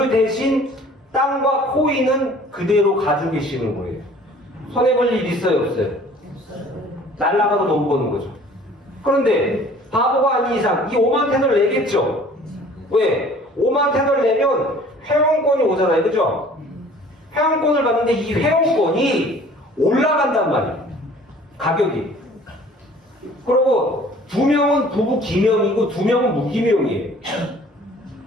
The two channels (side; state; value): both; normal; correlation 0.51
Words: 대신 땅과 코인은 그대로 가지고 계시는 거예요. 손해볼 일 있어요? 없어요? 날라가도 돈 버는 거죠. 그런데 바보가 아닌 이상 이 5만 테더를 내겠죠? 왜? 5만 테더를 내면 회원권이 오잖아요. 그죠? 회원권을 받는데 이 회원권이 올라간단 말이에요. 가격이. 그리고 2명은 부부 기명이고 2명은 무기명이에요.